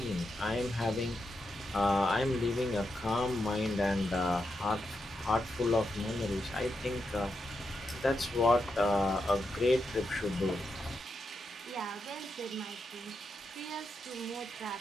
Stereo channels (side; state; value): both; normal; correlation 0.85